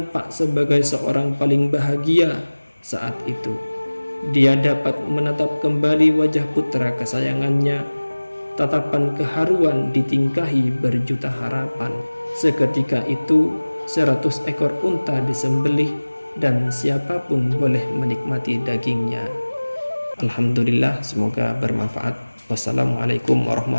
sebagai seorang paling bahagia saat itu. Dia dapat menatap kembali wajah putra kesayangannya. Tatapan keharuan ditingkahi berjuta harapan. Seketika itu 100 ekor unta disembelih dan siapapun boleh menikmati dagingnya. Alhamdulillah, semoga bermanfaat. Wassalamualaikum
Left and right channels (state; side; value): inverted; both; correlation -1.00